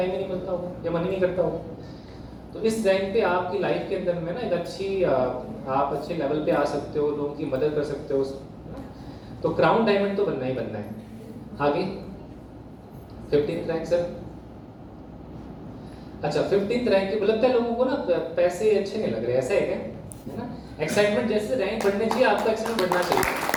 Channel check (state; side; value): identical; both; correlation 1.00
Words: ही नहीं मिलता होगा या मन ही नहीं करता होगा। तो इस रैंक पे आपकी लाइफ के अंदर में ना एक आप अच्छे लेवल पे आ सकते हो, लोगों की मदद कर सकते हो। तो क्राउन डायमंड तो बनना ही बनना है। आगे 15th रैंक सर। अच्छा, 15th रैंक के लगता है लोगों को ना पैसे अच्छे नहीं लग रहे, ऐसा है क्या, है ना। एक्साइटमेंट जैसे रैंक बढ़ने चाहिए, आपका एक्साइटमेंट बढ़ना चाहिए।